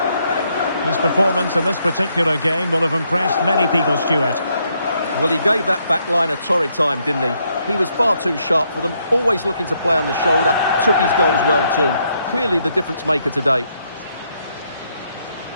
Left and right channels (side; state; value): both; inverted; correlation -0.75